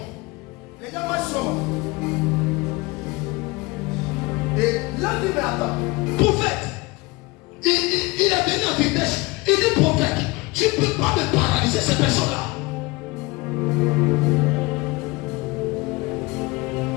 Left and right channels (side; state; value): right; quieter; 23.7 dB